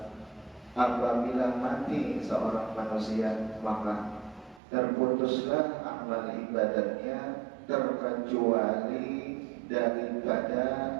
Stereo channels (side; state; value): left; drops out; at 4.6 s